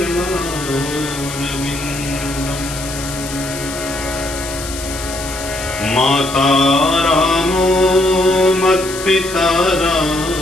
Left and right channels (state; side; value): noise; left; hiss, 10 dB below the sound